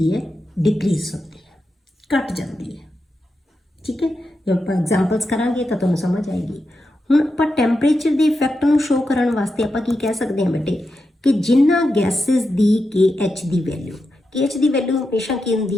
ਹੈ? ਡਿਕਰੀਜ਼ ਹੁੰਦੀ ਹੈ, ਘਟ ਜਾਂਦੀ ਹੈ। ਠੀਕ ਹੈ, ਜੇ ਆਪਾਂ ਐਗਜ਼ਾਮਪਲਸ ਕਰਾਂਗੇ ਤਾਂ ਤੁਹਾਨੂੰ ਸਮਝ ਆਏਗੀ। ਹੁਣ ਆਪਾਂ ਟੈਂਪਰੇਚਰ ਦੇ ਇਫੈਕਟ ਨੂੰ ਸ਼ੋ ਕਰਨ ਵਾਸਤੇ ਆਪਾਂ ਕੀ ਕਹਿ ਸਕਦੇ ਹਾਂ ਬੇਟੇ ਕਿ ਜਿਨ੍ਹਾਂ ਗੈਸਿਸ ਦੀ KH ਦੀ ਵੈਲਿਊ, KH ਦੀ ਵੈਲਿਊ ਹਮੇਸ਼ਾ ਕੀ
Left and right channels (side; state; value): both; normal; correlation 0.88